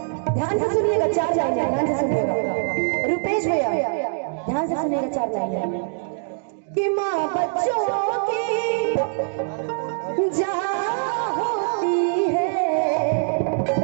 ध्यान से सुनिएगा, 4 लाइन है, ध्यान से सुनिएगा। रुपेश भैया ध्यान से सुनिएगा, 4 लाइन है कि माँ बच्चों की जा होती है,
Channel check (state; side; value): silent; left; 63 dB below the other